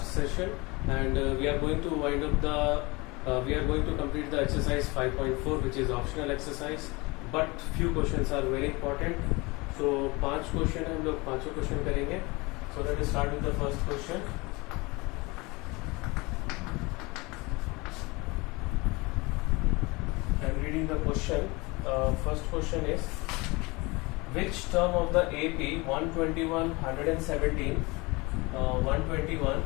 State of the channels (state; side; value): quieter; right; 24.9 dB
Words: session, and we are going to wind up we are going to complete the exercise 5.4, which is optional exercise, but few questions are very important. So 5 question है, हम लोग 5 क्वेश्चन करेंगे. So let us start with the first question. I'm reading the question. First question is, which term of the AP 121, 117, 121,